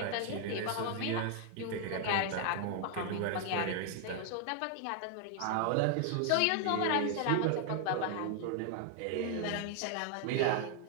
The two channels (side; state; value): both; different; correlation 0.00